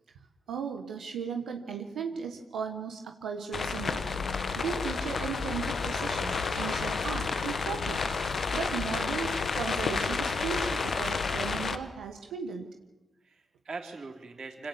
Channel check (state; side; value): normal; both; correlation 0.76